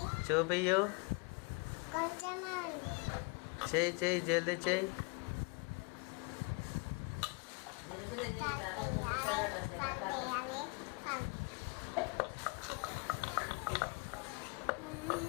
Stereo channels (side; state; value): right; quieter; 31.2 dB